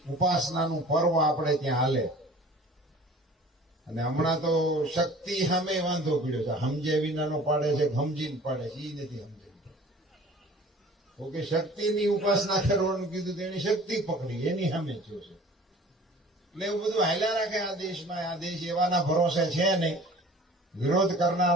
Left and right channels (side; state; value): both; normal; correlation 0.46